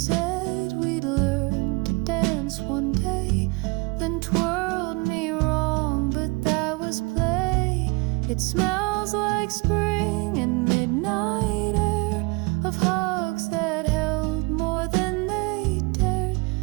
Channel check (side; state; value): left; quieter; 27.2 dB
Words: we'd learn to dance one day, then twirled me wrong, but that was play. It smells like spring and midnight air, of hugs that held more than they dared.